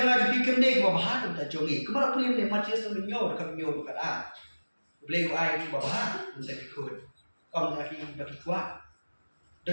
ju pi kamde ka ba nam ta jongi kamara pulim ne Matias no nyo ka nyo ka a BLEI ai ki ba ba nam ta ki khun kom ta ki ba ki kwa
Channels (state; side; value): inverted; both; correlation -1.00